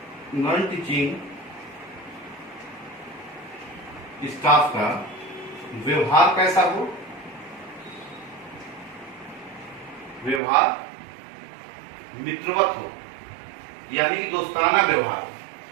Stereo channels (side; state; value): left; drops out; at 10.4 s